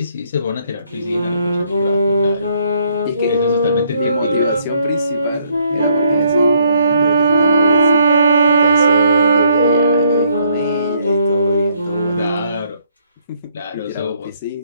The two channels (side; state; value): both; inverted; correlation -0.69